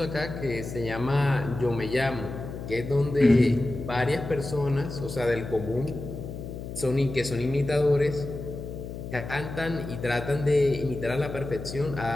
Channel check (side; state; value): left; noise; hum, 9 dB below the sound